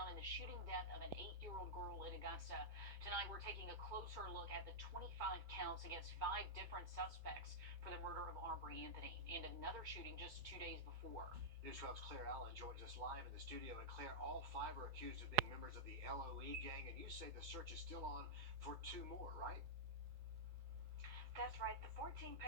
in the shooting death of an 8-year-old girl in Augusta. Tonight, we're taking a closer look at the 25 counts against 5 different suspects for the murder of Aubrey Anthony and another shooting just 2 days before. News 12's Claire Allen joins us live in the studio. And Claire, all 5 are accused of being members of the LOE gang, and you say the search is still on for 2 more, right? That's right. The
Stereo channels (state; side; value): late; left; 2.3 ms